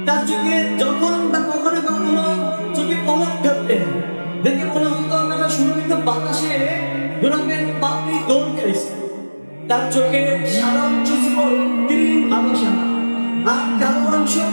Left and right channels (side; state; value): both; inverted; correlation -1.00